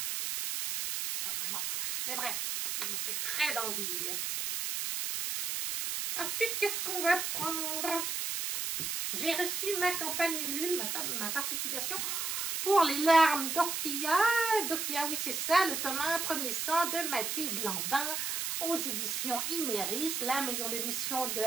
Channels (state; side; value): noise; right; hiss, 1 dB below the sound